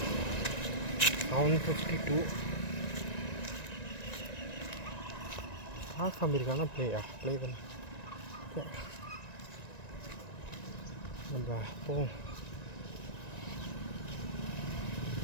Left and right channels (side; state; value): right; late; 1.9 ms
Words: 7:52. காமிருக்கானா ப்ளே தானே நம்ம போவோம்.